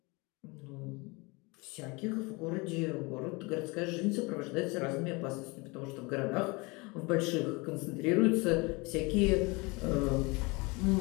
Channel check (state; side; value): quieter; right; 26.5 dB